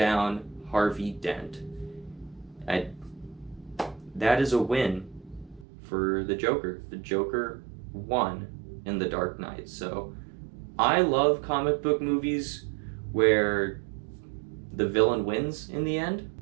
Harvey Dent. That is a win for the Joker. The Joker won in The Dark Knight. So I love comic book movies where the villain wins in the end.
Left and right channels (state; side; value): drops out; left; at 5.7 s